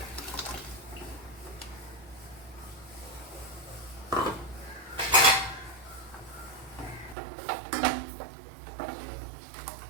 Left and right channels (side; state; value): left; drops out; at 7.2 s